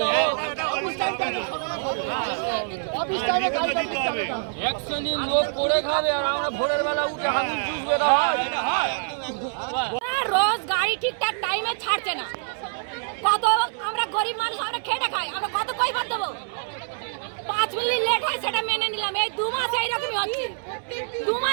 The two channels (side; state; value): left; silent; 62 dB below the other